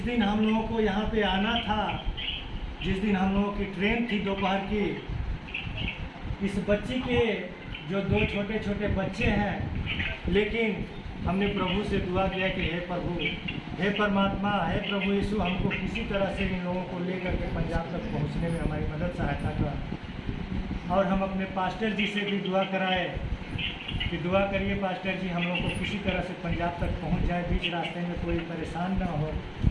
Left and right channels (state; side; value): identical; both; correlation 1.00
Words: दिन हम लोगों को यहाँ पे आना था, जिस दिन हम लोगों की ट्रेन थी दोपहर की, इस बच्ची के जो 2 छोटे छोटे बच्चे हैं, लेकिन हमने प्रभु से दुआ किया कि हे प्रभु, हे परमात्मा, हे प्रभु यीशु, हमको किसी तरह से इन लोगों को लेकर के पंजाब तक पहुंचने में हमारी मदद सहायता कर। और हम अपने पास्टर जी से भी दुआ कराए कि दुआ करिए पास्टर जी, हम लोग को किसी तरह से पंजाब तक पहुंच जाए, बीच रास्ते में कोई परेशान ना हो,